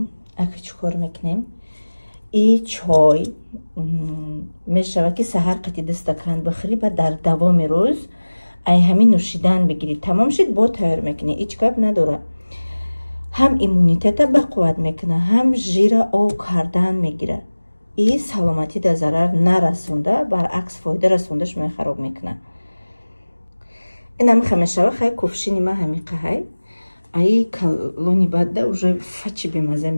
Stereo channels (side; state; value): both; inverted; correlation -1.00